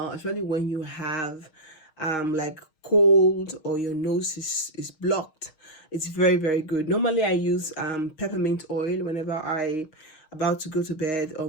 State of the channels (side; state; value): right; late; 6.4 ms